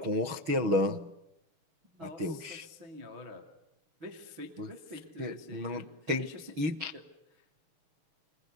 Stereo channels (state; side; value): late; left; 6.4 ms